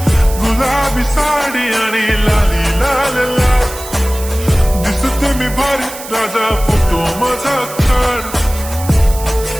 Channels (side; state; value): right; noise; hiss, 13 dB below the sound